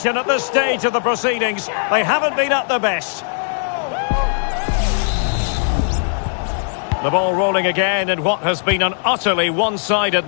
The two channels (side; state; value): right; silent; 65 dB below the other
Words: at this stage of the proceedings? They haven't been at their best. The ball rolling again in what has been an utterly one-sided